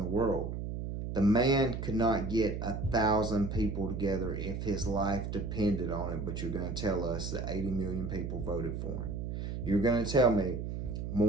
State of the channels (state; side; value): noise; right; hum, 5 dB below the sound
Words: world. The man could not get 1,000 people together if his life depended on it, but you're going to tell us that 80 million people voted for him. You're going to tell me